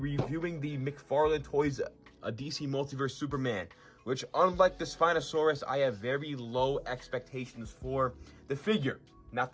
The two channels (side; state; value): both; identical; correlation 1.00